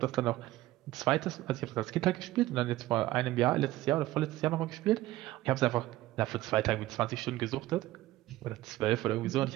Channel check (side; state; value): left; quieter; 16.4 dB